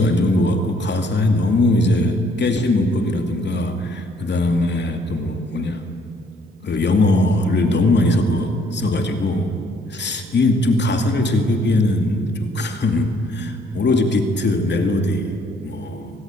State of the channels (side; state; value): both; normal; correlation 0.64